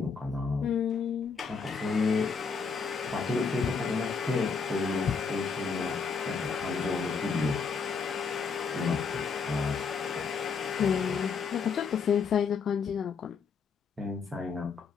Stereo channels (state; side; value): quieter; right; 5.4 dB